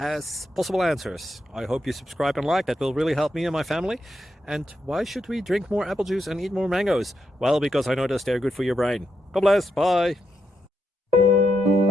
possible answers. I hope you subscribe and like, that will really help me and my family. And why should we drink more apple juice and eat more mangoes? Well, because I noticed they're good for your brain. God bless, bye.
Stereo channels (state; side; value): normal; both; correlation 0.82